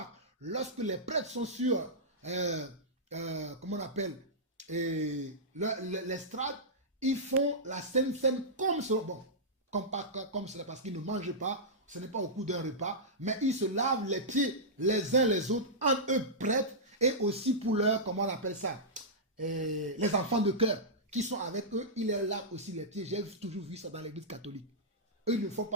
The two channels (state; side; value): normal; both; correlation -0.13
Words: lorsque les prêtres sont sur, comment on appelle, l'estrade, ils font la Sainte Seine comme cela. Bon, comme cela, parce qu'ils ne mangent pas, ce n'est pas au cours d'un repas, mais ils se lavent les pieds les uns les autres, entre eux prêtres, et aussi pour leur, comment on appelle ça, les enfants de cœur qui sont avec eux, ils leur lavent aussi les pieds. J'ai toujours vu ça dans l'église catholique. Eux, ils ne le font